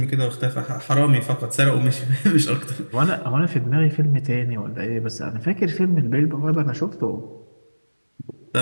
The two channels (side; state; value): both; inverted; correlation -1.00